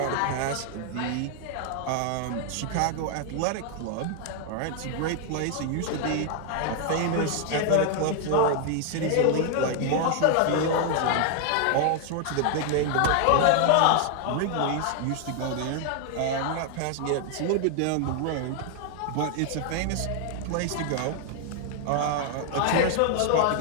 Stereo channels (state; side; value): different; both; correlation 0.00